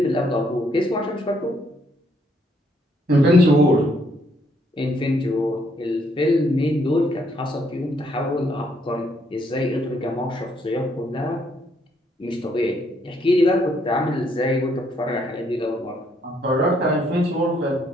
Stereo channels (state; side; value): normal; both; correlation 0.71